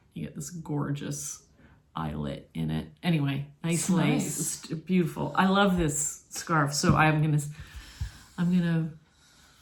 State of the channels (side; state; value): both; identical; correlation 1.00